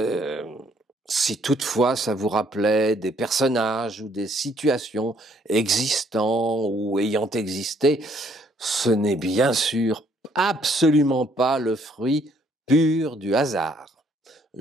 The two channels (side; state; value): both; normal; correlation 0.66